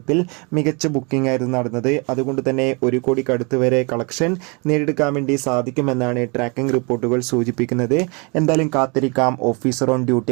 മികച്ച ബുക്കിംഗ് ആയിരുന്നു നടന്നത്. അതുകൊണ്ട് തന്നെ 1 കോടിക്കടുത്ത് വരെ കളക്ഷൻ നേടിയെടുക്കാൻ വേണ്ടി സാധിക്കുമെന്നാണ് ട്രാക്കിംഗ് റിപ്പോർട്ടുകൾ സൂചിപ്പിക്കുന്നത്. എന്തായാലും കാത്തിരിക്കാം ഓഫീസർ ഓൺ ഡ്യൂട്ടി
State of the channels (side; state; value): left; quieter; 31.3 dB